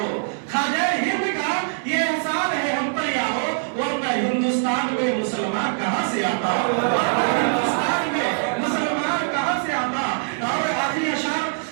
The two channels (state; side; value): silent; left; 64 dB below the other